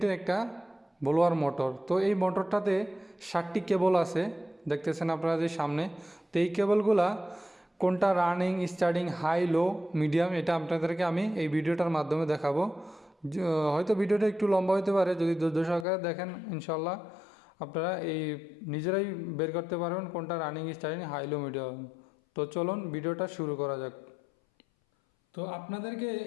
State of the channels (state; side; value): drops out; right; at 15.9 s